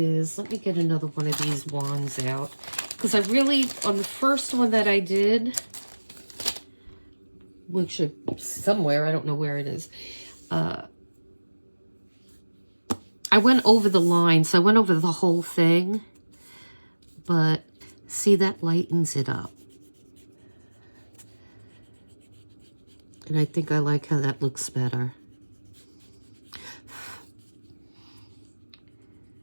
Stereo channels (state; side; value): inverted; both; correlation -1.00